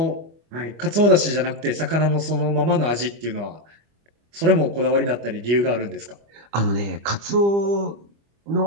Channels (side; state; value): left; late; 25 ms